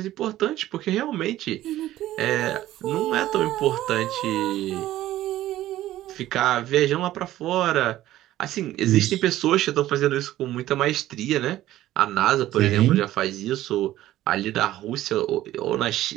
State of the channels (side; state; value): left; quieter; 14.4 dB